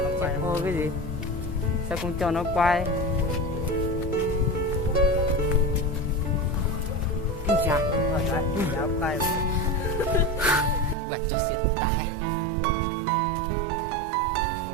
Cái gì? Sao không cho nó quay? Kinh chà. Quay. Quạt cho xịt tai.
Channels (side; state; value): left; drops out; at 11.0 s